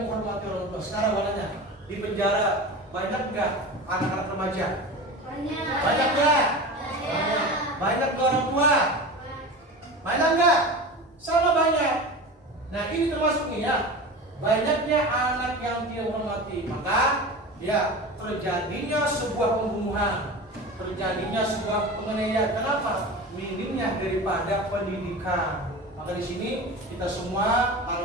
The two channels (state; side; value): normal; both; correlation 0.31